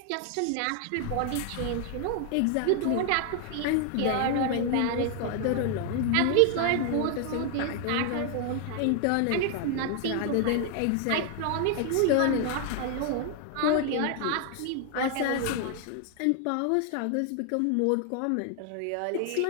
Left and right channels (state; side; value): different; both; correlation 0.00